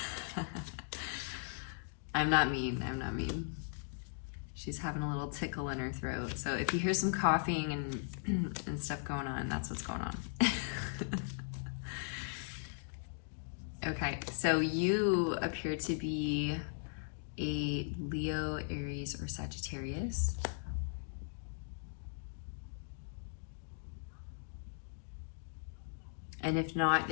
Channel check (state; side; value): silent; right; digital silence